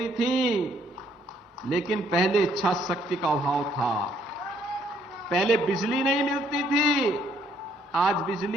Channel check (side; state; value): both; normal; correlation 0.67